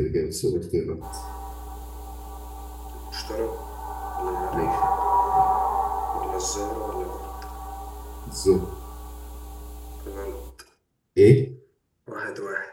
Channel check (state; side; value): identical; both; correlation 1.00